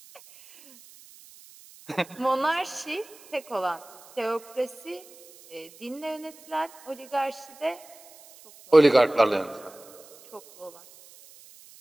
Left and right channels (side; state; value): right; noise; hiss, 23 dB below the sound